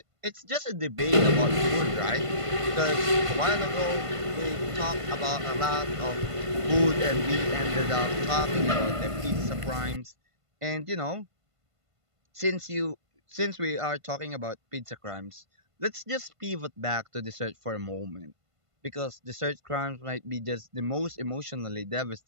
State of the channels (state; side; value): late; left; 1.5 ms